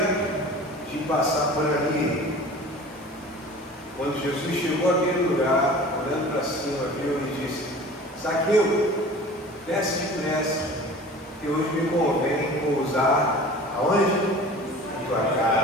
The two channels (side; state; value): both; normal; correlation 0.41